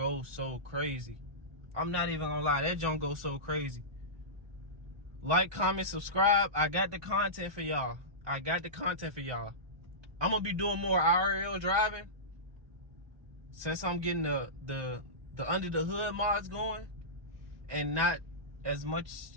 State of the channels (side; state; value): left; late; 1.2 ms